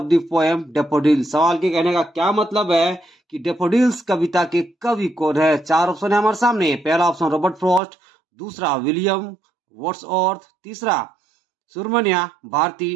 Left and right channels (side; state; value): left; drops out; at 7.8 s